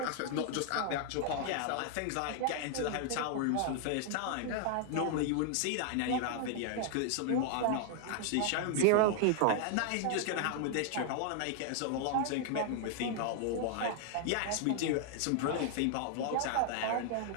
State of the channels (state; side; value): different; both; correlation 0.00